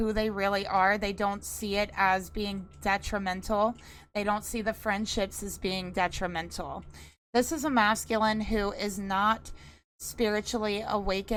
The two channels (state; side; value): identical; both; correlation 1.00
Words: they really are. They don't see it as being detrimental. They don't see the friendships as being detrimental. This is a masculine who is not spiritually